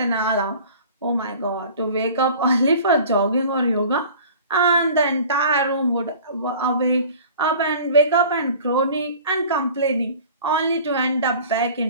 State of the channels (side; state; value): both; inverted; correlation -0.44